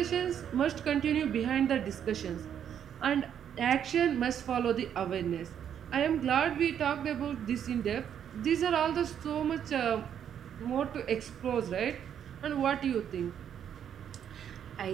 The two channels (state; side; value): quieter; left; 9.0 dB